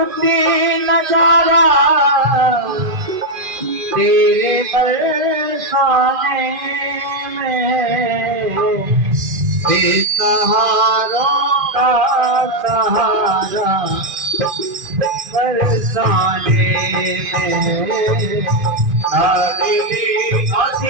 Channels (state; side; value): late; left; 2.4 ms